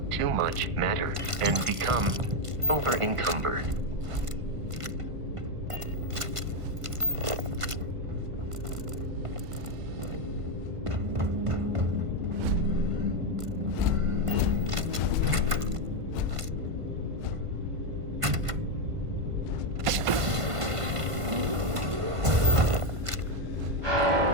too much matter and become over-encumbered.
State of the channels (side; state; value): left; late; 1.5 ms